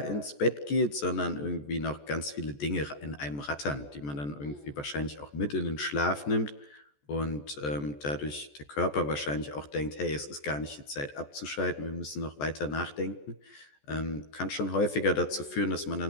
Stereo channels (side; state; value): right; late; 14 ms